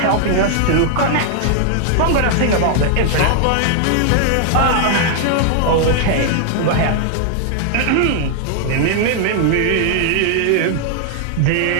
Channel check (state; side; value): different; both; correlation 0.00